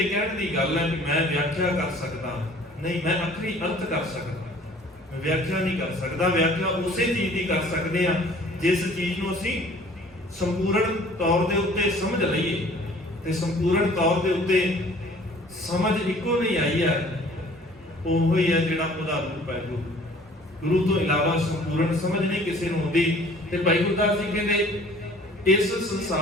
ਕਹਿਣ ਦੀ ਗੱਲ ਹੈ ਕਿ ਮੈਂ ਵਿਆਖਿਆ ਕਰ ਸਕਦਾ, ਨਹੀਂ, ਮੈਂ ਅਖਰੀ ਅਰਥ ਕਰ ਸਕਦਾ, ਮੈਂ ਵਿਆਖਿਆ ਨਹੀਂ ਕਰ ਸਕਦਾ। ਵਿਆਖਿਆ ਉਸੇ ਚੀਜ਼ ਦੀ ਕਰ ਸਕਦੇ ਆ ਜਿਸ ਚੀਜ਼ ਨੂੰ ਅਸੀਂ ਸੰਪੂਰਨ ਤੌਰ ਦੇ ਉੱਤੇ ਸਮਝ ਲਈਏ। ਤੇ ਸੰਪੂਰਨ ਤੌਰ ਦੇ ਉੱਤੇ ਸਮਝ ਇੱਕੋ ਨਹੀਂ ਆਈ ਹੈ, ਉਹ ਹੀ ਹੈ ਜਿਹੜਾ ਉਹਦਾ ਰੂਪ ਹੈ। ਗੁਰੂ ਤੋਂ ਇਲਾਵਾ ਸੰਪੂਰਨ ਸਮਝ ਨਹੀਂ ਕਿਸੇ ਨੂੰ ਆਉਂਦੀ। ਤੇ ਭਾਈ ਗੁਰਦਾਸ ਜੀ ਕਹਿੰਦੇ ਇਸ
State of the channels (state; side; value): normal; both; correlation 0.52